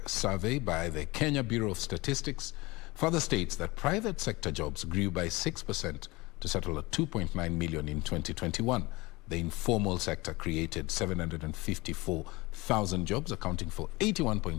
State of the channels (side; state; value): right; quieter; 22.6 dB